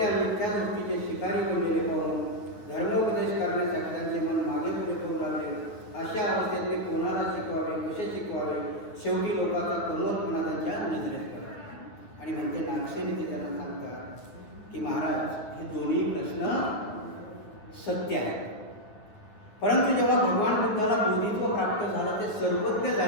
मिथ्या दृष्टीचे शिकारी बनलेले पाहून धर्मोपदेश करण्यासाठी त्यांचे मन मागे पुढे करू लागले. अशा अवस्थेत मी कोणाला शिकवावे, कसे शिकवावे, शेवटी लोकांचा कमवतपणा त्यांच्या नजरेत पडला. आणि म्हणते नागसेनी ते त्यांना सांगतात की महाराज हे दोन्ही प्रश्न सत्य आहेत, परंतु जेव्हा भगवान बुद्धाला बोधित्व प्राप्त झालं ते सर्वज्ञ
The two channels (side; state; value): right; late; 9.6 ms